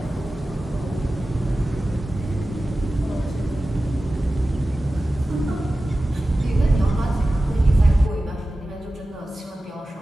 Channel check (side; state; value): both; normal; correlation 0.95